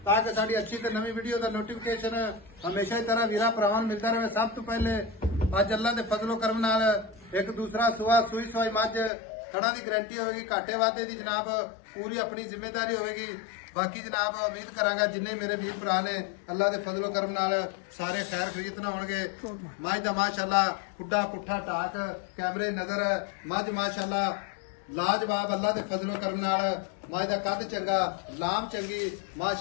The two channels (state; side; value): drops out; right; at 9.1 s